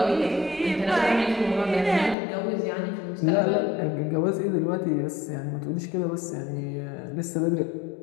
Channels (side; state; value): right; drops out; at 2.1 s